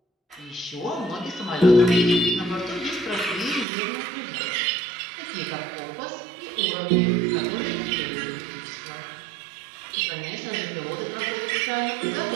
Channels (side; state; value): left; drops out; at 3.7 s